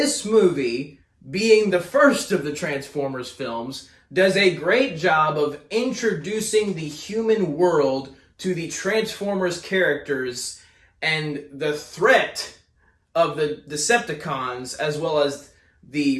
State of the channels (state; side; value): identical; both; correlation 1.00